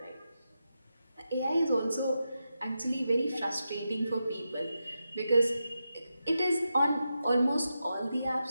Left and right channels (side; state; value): both; inverted; correlation -0.88